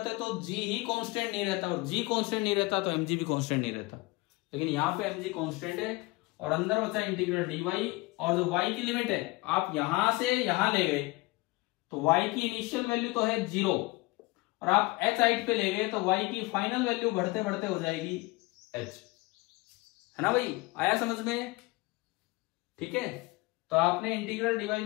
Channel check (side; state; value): right; quieter; 22.8 dB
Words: तो g ही कांस्टेंट नहीं रहता, और g कांस्टेंट नहीं रहता तो mg भी कांस्टेंट नहीं रहता। लेकिन यहाँ पे mg कांस्टेंट है, और अंदर बचा इंटीग्रल dy, और जो y की लिमिट है आप यहां से यहां ले गए तो y की इनिशियल वैल्यू तो है 0, और आप h हाइट पे ले गए तो y की फाइनल वैल्यू बढ़ते बढ़ते हो जाएगी h, है ना भाई? आया समझ में? ठीक है, तो आपने इंटीग्रल dy